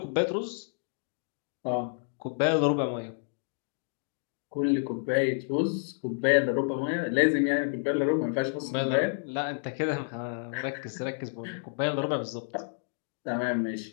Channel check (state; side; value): silent; right; digital silence